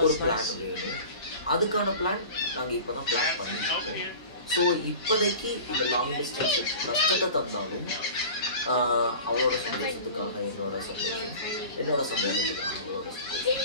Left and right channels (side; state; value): both; inverted; correlation -0.38